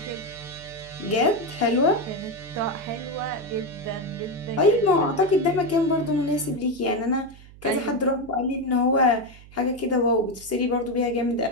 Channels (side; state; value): right; noise; hum, 20 dB below the sound